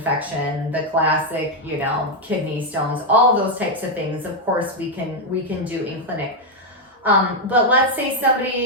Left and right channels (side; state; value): both; normal; correlation 0.02